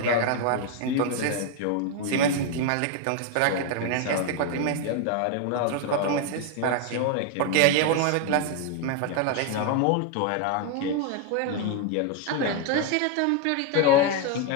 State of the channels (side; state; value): both; different; correlation 0.01